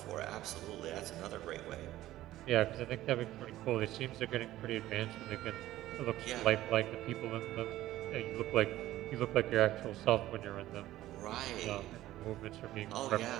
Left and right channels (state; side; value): quieter; left; 14.9 dB